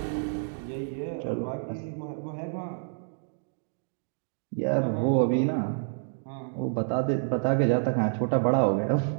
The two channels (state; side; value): silent; left; digital silence